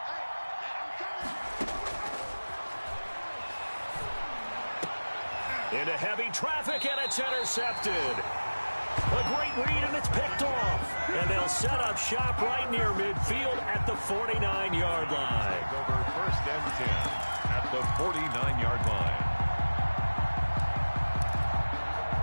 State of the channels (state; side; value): inverted; both; correlation -1.00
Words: Into heavy traffic, and it's intercepted. A great read, and it's picked off. And they'll set up shop right near midfield at the 49-yard line. Over 1st and 10 at the 49-yard line.